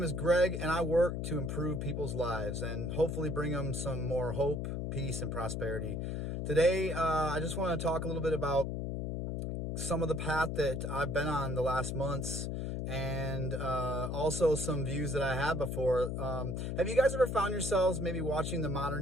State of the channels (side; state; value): left; noise; hum, 2 dB below the sound